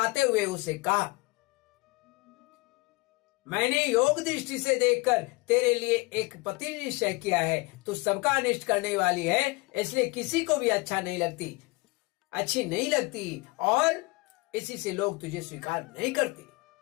हुए उसे कहा, मैंने योग दृष्टि से देखकर तेरे लिए एक पति निश्चय किया है। तू सबका अनिष्ट करने वाली है, इसलिए किसी को भी अच्छी नहीं लगती और इसी से लोग तुझे स्वीकार नहीं करते।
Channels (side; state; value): right; quieter; 25.4 dB